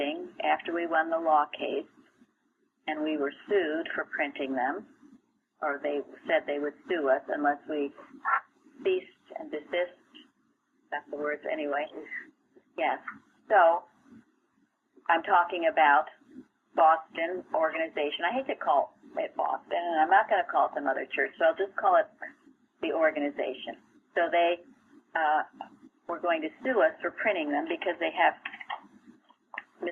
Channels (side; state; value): both; identical; correlation 1.00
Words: after we won the law case, and we were sued for printing them, or they said they would sue us unless we ceased and desist. That's the words anyway. Yes. So I'm talking about Boston organization. I hate to call it Boston, and I'm not going to call it some other church, so I'll just call it the organization. So they were going to sue us for printing them because they have